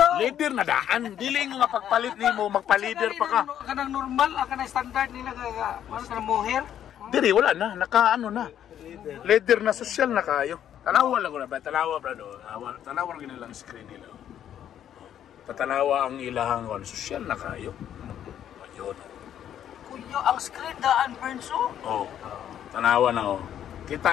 Leader na daan. Dili nga pagpalit nimo, magpa-leader pa ka. Kanang normal, kanang standard nila kaya ano kanang mohair. Diri wala na, nakaano na. Leader na social na kayo. Tanawa lang ko na ba? Tanawa brado. Tanawa lang nilang screen nila. Patanawa ang ilahang kon. Social na kayo. Ayun. Kuya, ang screen daan Bernso. Oh. Tanawa na oh.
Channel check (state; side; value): quieter; right; 10.2 dB